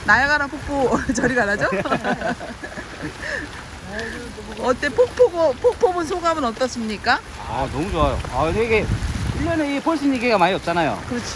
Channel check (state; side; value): identical; both; correlation 1.00